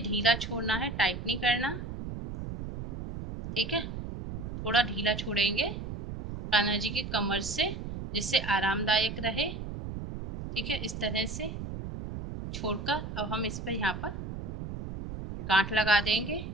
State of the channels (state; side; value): noise; right; rumble, 7 dB below the sound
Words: ढीला छोड़ना है, टाइट नहीं करना। ठीक है, थोड़ा ढीला छोड़ेंगे कान्हा जी की कमर से, जिससे आरामदायक रहे। ठीक है, इस तरह से छोड़कर अब हम इस पर यहाँ पर गांठ लगा देंगे